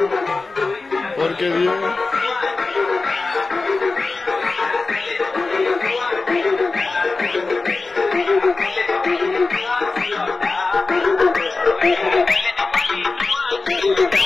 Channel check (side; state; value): right; quieter; 3.7 dB